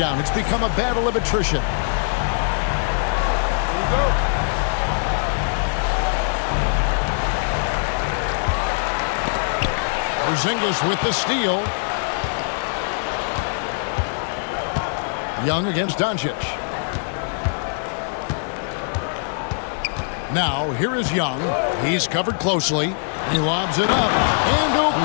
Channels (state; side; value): silent; right; digital silence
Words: It's become a battle of attrition. Here we go. Porzingis with the steal. Young against Doncic. Now, here is Young. He's covered closely. He lobs it up. And